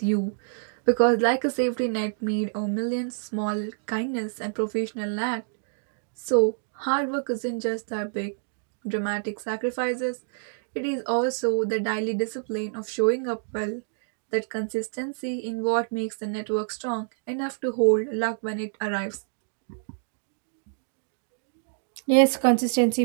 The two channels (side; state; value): left; silent; digital silence